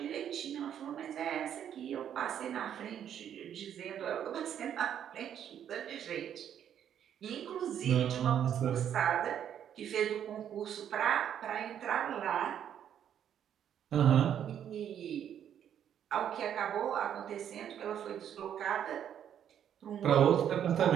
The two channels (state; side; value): quieter; left; 9.5 dB